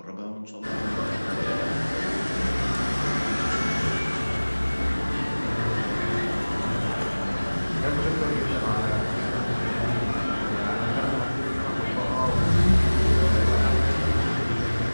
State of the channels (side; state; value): both; inverted; correlation -1.00